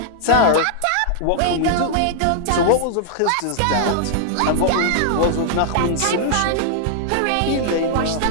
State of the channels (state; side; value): different; both; correlation -0.01